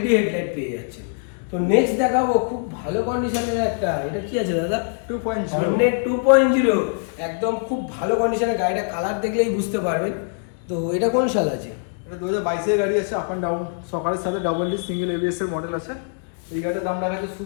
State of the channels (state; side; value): silent; right; 64 dB below the other